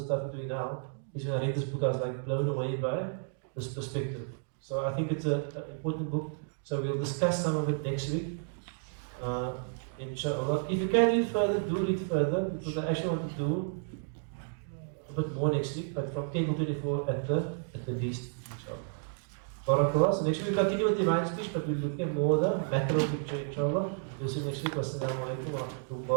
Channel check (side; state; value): left; silent; digital silence